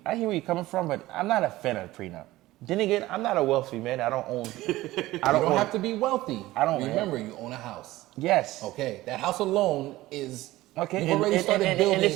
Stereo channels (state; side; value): quieter; left; 17.4 dB